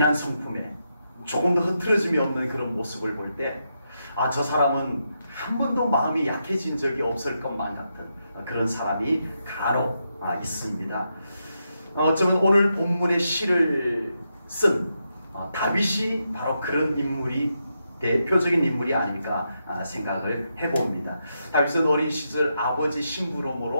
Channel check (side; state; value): both; inverted; correlation -0.84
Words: 성품에 조금도 흐트러짐이 없는 그런 모습을 볼 때 저 사람은 한 번도 마음이 약해진 적이 없을 것만 같은 그런 사람이 간혹 있습니다. 어쩌면 오늘 본문의 시를 쓴 다윗이 바로 그런 인물이 대표적인 인물이 아닐까 생각을 해봅니다. 다윗은 어린 시절 아버지